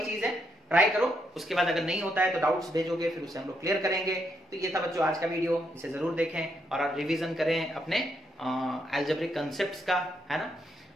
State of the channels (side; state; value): both; normal; correlation 0.78